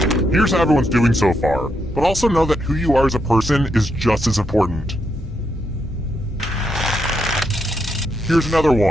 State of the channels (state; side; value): normal; both; correlation 0.80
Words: Here's how everyone's doing so far, but also know that who you are as a person is just as important. Here's another